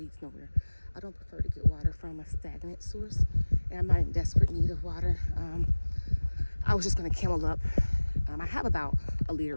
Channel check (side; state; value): both; inverted; correlation -1.00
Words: nowhere. I don't prefer to get water from a stagnant source, and I'm not in desperate need of water. I was just going to camel up. I have about a